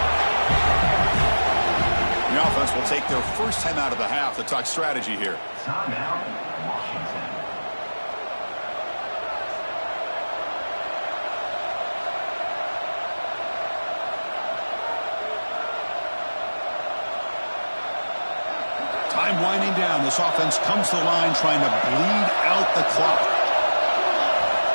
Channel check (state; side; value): inverted; both; correlation -1.00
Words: The offense will take their 1st time out of the half to talk strategy here. Timeout, Washington. Time winding down. This offense comes to the line trying to bleed out the clock.